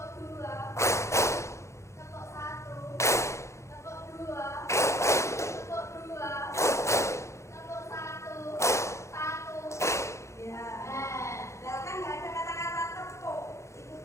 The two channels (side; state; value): right; late; 0.14 ms